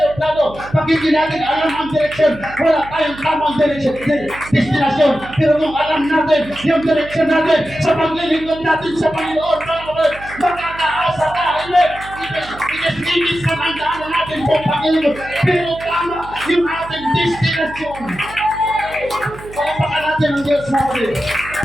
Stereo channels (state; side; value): noise; right; hum, 16 dB below the sound